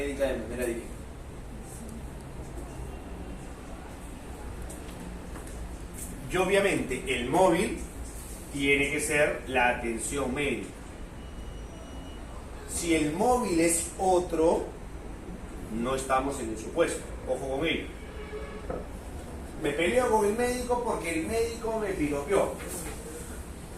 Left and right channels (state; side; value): identical; both; correlation 1.00